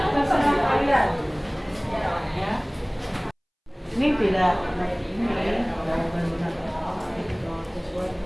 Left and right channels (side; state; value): both; identical; correlation 1.00